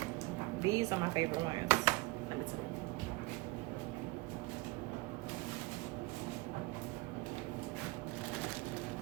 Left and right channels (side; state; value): left; quieter; 22.8 dB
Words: These are my favorite ones. Let me tell you.